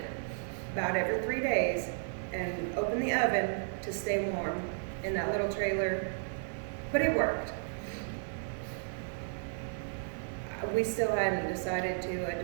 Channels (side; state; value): left; silent; digital silence